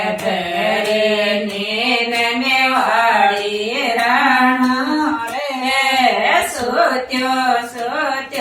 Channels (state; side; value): identical; both; correlation 1.00